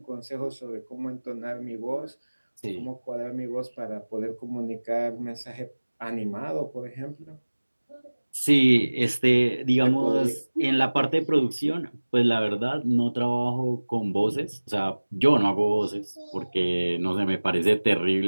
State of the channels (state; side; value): inverted; both; correlation -1.00